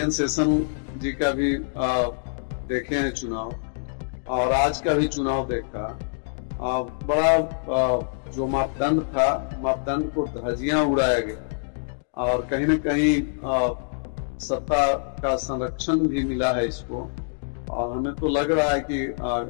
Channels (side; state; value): right; silent; digital silence